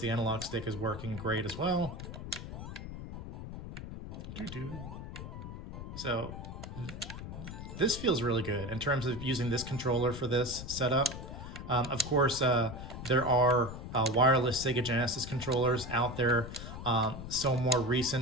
analog stick is working great as well. So this feels really good in terms of using this controller for this setup. Of course, there are wireless Sega Genesis controllers out there. Some more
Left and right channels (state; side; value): noise; left; rumble, 9 dB below the sound